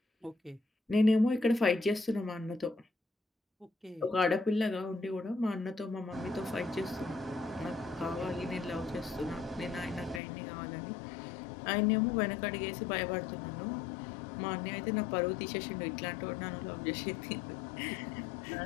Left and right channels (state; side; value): drops out; right; at 10.2 s